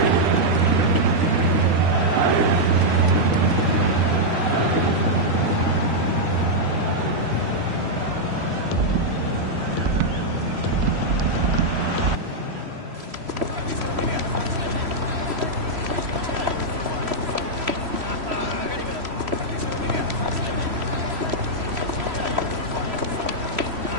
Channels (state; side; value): late; left; 3.0 ms